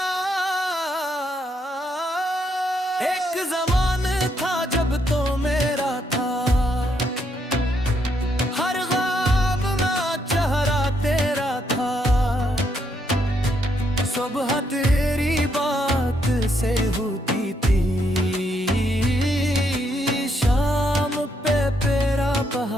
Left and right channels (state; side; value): normal; both; correlation 0.76